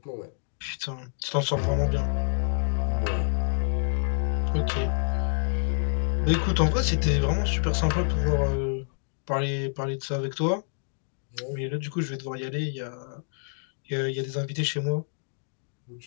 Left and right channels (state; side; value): silent; right; 60 dB below the other